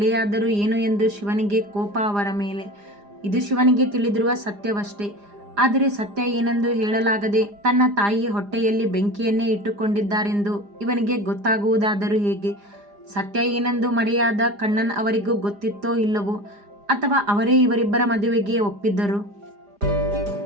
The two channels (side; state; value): left; late; 4.9 ms